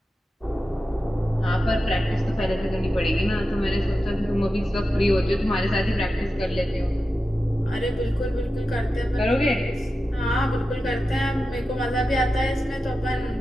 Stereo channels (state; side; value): normal; both; correlation 0.92